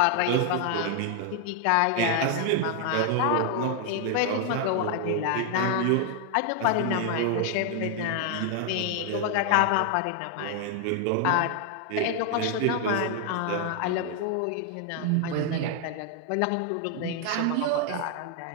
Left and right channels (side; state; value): both; different; correlation 0.00